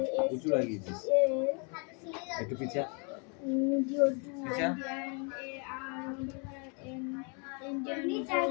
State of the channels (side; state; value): right; quieter; 37.2 dB